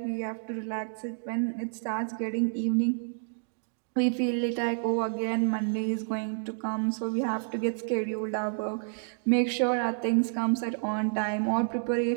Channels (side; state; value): left; silent; digital silence